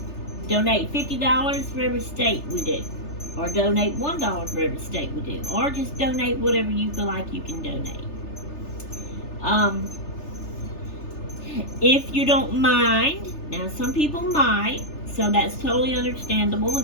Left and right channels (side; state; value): right; late; 3.3 ms